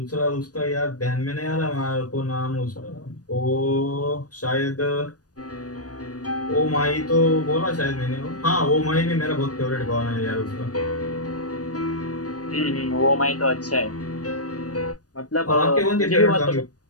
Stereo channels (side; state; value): right; late; 0.68 ms